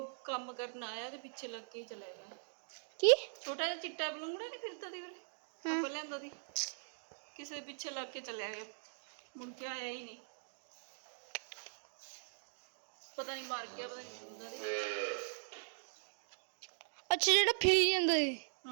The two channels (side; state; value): left; silent; digital silence